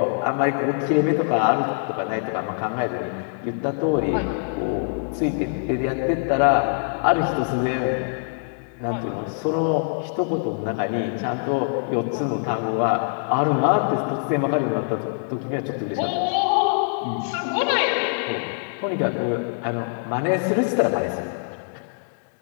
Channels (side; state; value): right; silent; 63 dB below the other